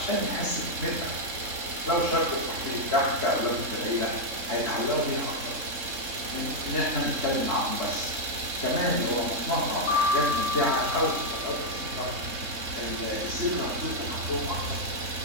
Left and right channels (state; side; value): late; left; 3.7 ms